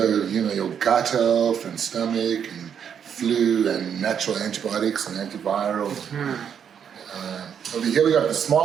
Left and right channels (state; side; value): quieter; left; 8.0 dB